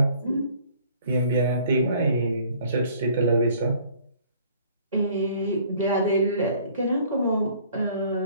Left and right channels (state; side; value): inverted; both; correlation -0.56